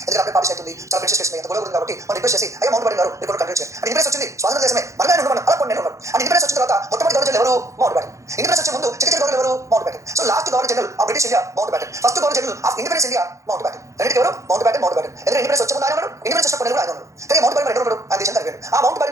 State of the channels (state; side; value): late; left; 0.15 ms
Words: ఎందుకంటే అప్పుడే పార్టీ అవుతుంది చాలా ప్రిన్సెస్ చేస్తుంది ఎంత గొడవ ఉంది కాబట్టి మనం రిక్వెస్ట్ చేసి అయ్యా మౌంట్ బ్యాటన్ గారు ఇప్పుడు కంటిన్యూ చేయాలి అండ్ ఇండిపెండెన్స్ వచ్చింది స్వాతంత్ర దేశమే మనమే ఉన్నాడు అలా కొన్ని ఉన్నాడు అండ్ ఇండిపెండెన్స్ వచ్చిన తర్వాత మొట్టమొదటి గవర్నర్ ఎవరు మౌంట్ బ్యాటన్ ఇండిపెండెన్స్ వచ్చే ముందు చిన్న గవర్నర్ ఎవరు mount baton so last governor general of British India mount baton first governor general of independence India mount baton రెండింటి ఎవరు మౌంట్ బ్యాటన్ ఎందుకంటే ఇండిపెండెన్స్ వచ్చే ముందు ఆయన ఉన్నాడు ఇండిపెండెన్స్ వచ్చినప్పుడు ఆయన ఉన్నాడు కానీ మౌంట్ బ్యాటన్ ఎవరు ఆ దేశం జరిగాడు ఆ మౌంట్